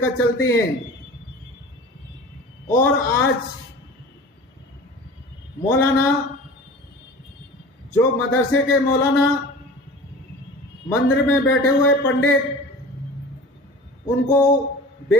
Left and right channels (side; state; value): both; normal; correlation 0.38